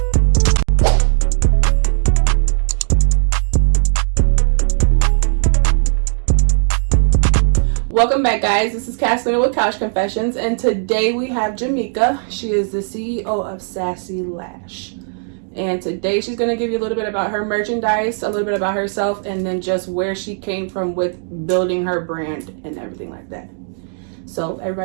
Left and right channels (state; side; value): silent; left; digital silence